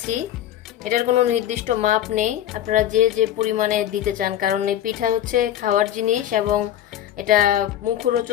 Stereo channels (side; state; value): right; quieter; 11.6 dB